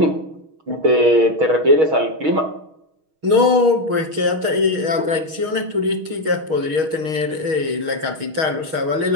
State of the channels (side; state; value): left; late; 6.4 ms